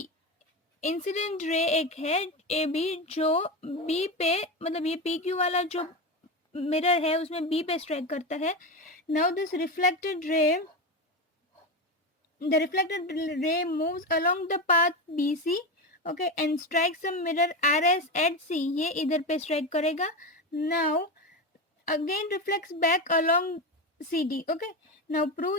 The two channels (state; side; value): normal; both; correlation 0.18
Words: Incident ray एक है AB जो B पे, मतलब ये PQ वाला जो मिरर है उसमें B पे स्ट्राइक करता है. Now this reflected ray, the reflected ray moves along the path BC, okay, and strikes the mirror RS at C. ये इधर पे strike करेगा. Now again reflects back along CD. okay, now